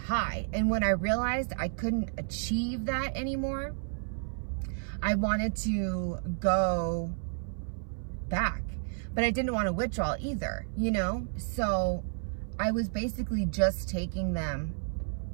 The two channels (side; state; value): left; silent; 57 dB below the other